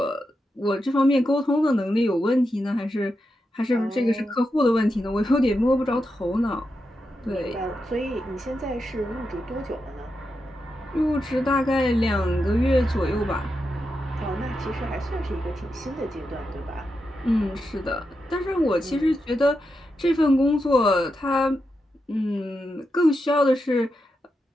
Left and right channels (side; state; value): both; normal; correlation 0.87